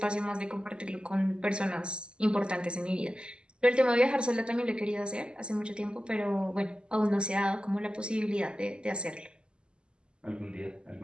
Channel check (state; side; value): late; left; 0.051 ms